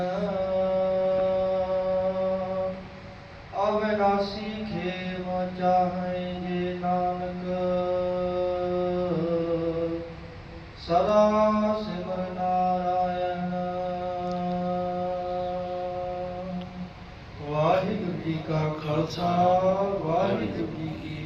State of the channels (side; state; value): both; identical; correlation 1.00